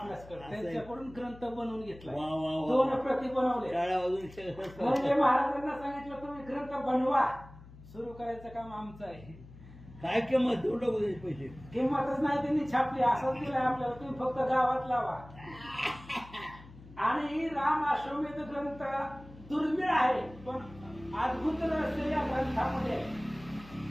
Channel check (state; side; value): noise; left; hum, 19 dB below the sound